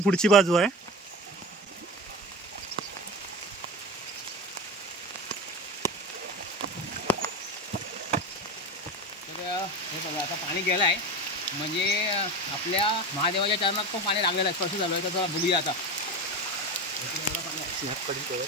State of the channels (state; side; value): normal; both; correlation 0.25